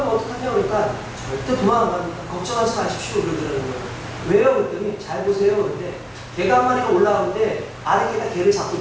어떡하냐 그러니까 절대 도망 안 갑니다. 걱정하지 마십시오 그러더라는 거예요. 왜요? 그랬더니 잘 보세요. 그런데 개가 한 마리가 올라오는데 아래 개가 개를 자꾸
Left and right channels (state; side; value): identical; both; correlation 1.00